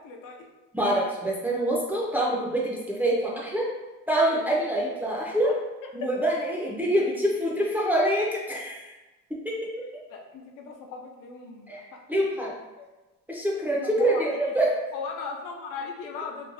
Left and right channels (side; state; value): both; normal; correlation 0.52